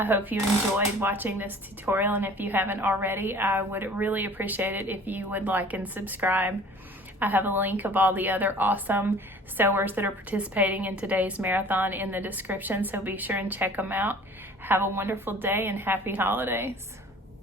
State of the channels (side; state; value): both; normal; correlation 0.48